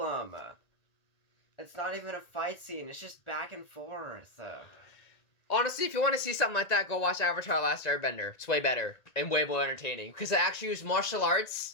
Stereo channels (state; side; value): late; right; 1.9 ms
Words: It's not even a fight scene. It's just back and forth. Honestly, if you want to see something like that, go watch Avatar: Last Airbender. It's way better and way more entertaining because they actually use martial